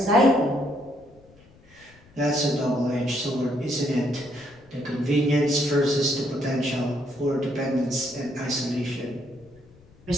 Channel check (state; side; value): noise; left; rumble, 27 dB below the sound